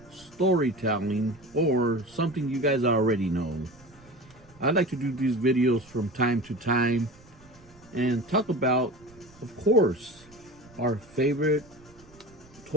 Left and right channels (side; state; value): right; noise; rumble, 26 dB below the sound